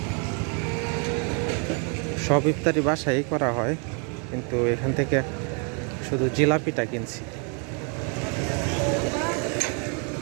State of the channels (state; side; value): quieter; left; 37.9 dB